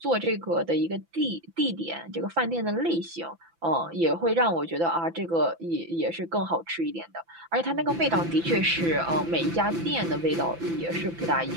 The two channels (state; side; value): late; left; 6.0 ms